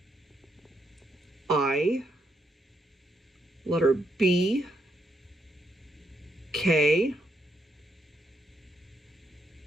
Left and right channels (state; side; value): normal; both; correlation 0.79